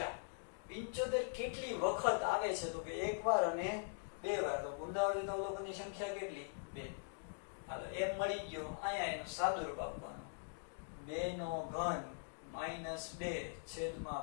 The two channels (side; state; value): right; silent; digital silence